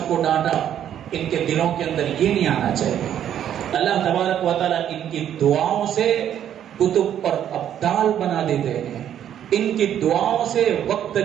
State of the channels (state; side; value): quieter; left; 10.2 dB